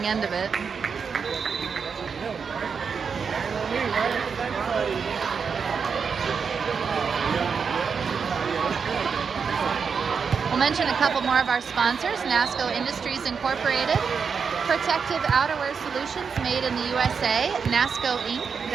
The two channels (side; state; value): left; quieter; 6.0 dB